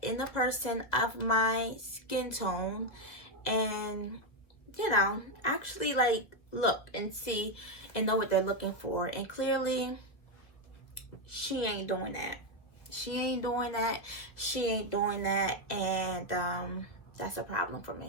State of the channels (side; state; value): right; late; 2.0 ms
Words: in the person of my skin tone, and you know, actually like look and see and know what they're looking for. And clearly she ain't doing that. She ain't doing that. She ain't doing that. And that's a problem for